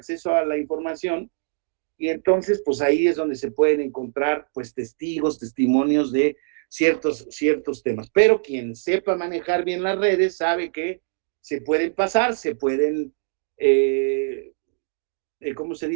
a la información y entonces, pues ahí es donde se pueden encontrar, pues, testigos, testimonios de ciertos temas. Pero quien sepa manejar bien las redes sabe que se pueden pasar, se pueden ¿cómo se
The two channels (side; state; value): left; silent; digital silence